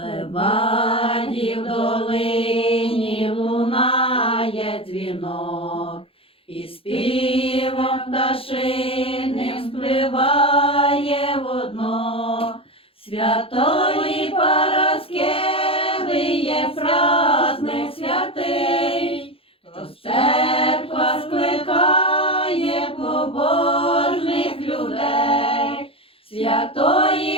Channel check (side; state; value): right; late; 0.27 ms